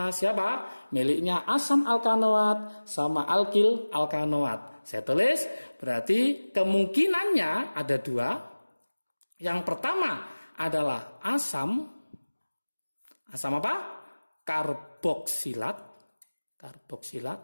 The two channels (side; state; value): both; inverted; correlation -1.00